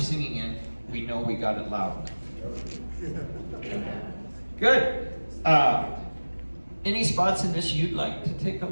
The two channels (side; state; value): both; inverted; correlation -1.00